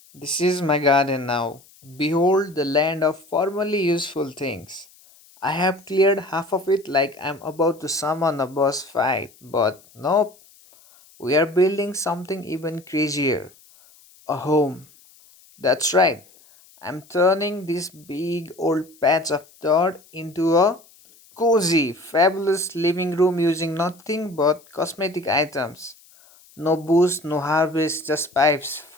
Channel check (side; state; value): left; noise; hiss, 27 dB below the sound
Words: This is my garden now. Behold the land of formerly useful things. I have cleared half of it like I'm about to summon a boss fight, but nope, we are building something even crazier, a home. That's right, I'm turning this big old patch of dirt into a cozy, fabulous living room using nothing but cosmetic items. No booze, no harvest, just pipes,